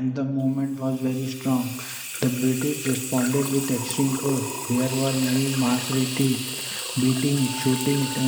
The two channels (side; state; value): both; identical; correlation 1.00